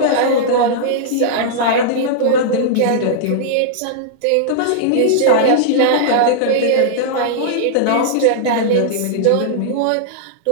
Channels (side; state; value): both; different; correlation -0.02